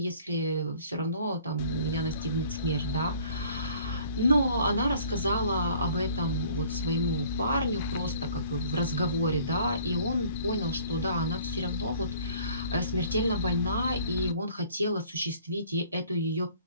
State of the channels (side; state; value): both; inverted; correlation -0.54